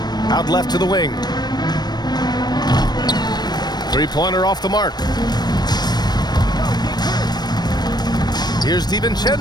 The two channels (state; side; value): late; right; 0.20 ms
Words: Out left to the wing. 3-pointer off the mark. Here's